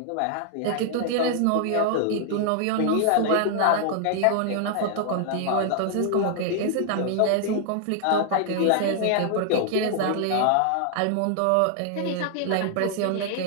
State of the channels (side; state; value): both; different; correlation 0.00